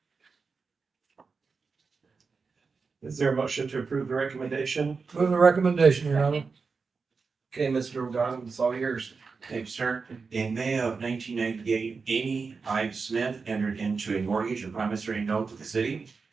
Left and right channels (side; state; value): left; quieter; 4.8 dB